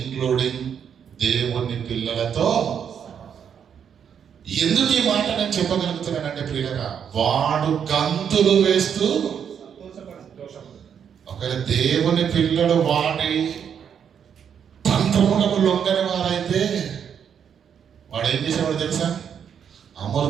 దేవుని పిల్లలతో. ఎందుకు ఈ మాట నేను చెప్పగలుగుతున్నానంటే ప్రియులారా, వాడు గంతులు వేస్తూ, ఒకవేళ దేవుని పిల్లలు వాడి తంత్రములకు లొంగని వారైతే వాడు ఏం చేసేవాడు తెలుసా?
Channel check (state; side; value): quieter; left; 7.9 dB